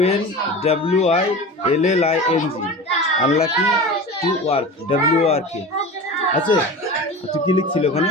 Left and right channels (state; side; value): normal; both; correlation 0.32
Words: আনলাকিং টু ওয়ার্ক WRK আছে তুই কি লিখছিল ওখানে